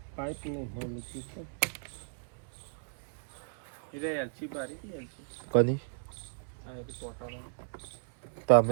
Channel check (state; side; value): silent; left; 55 dB below the other